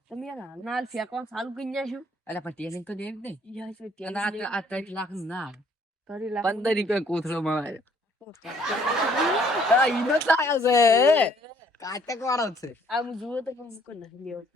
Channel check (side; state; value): both; normal; correlation 0.62